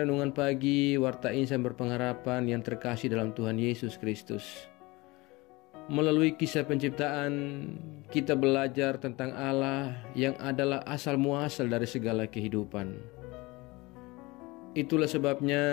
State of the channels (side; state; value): right; quieter; 22.9 dB